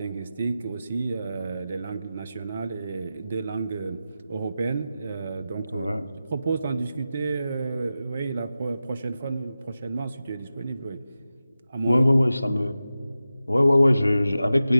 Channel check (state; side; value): inverted; both; correlation -0.92